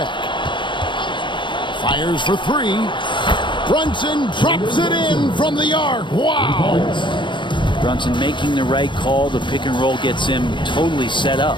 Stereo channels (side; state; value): right; late; 0.23 ms